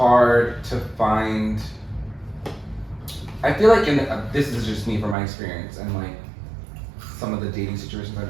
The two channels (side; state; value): left; drops out; at 5.2 s